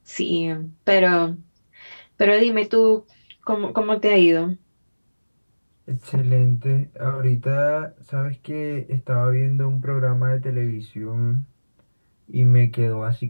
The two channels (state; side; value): inverted; both; correlation -1.00